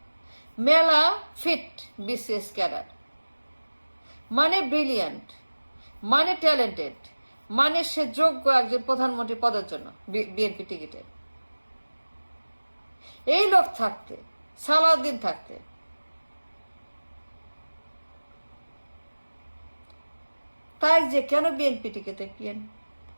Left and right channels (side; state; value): both; inverted; correlation -1.00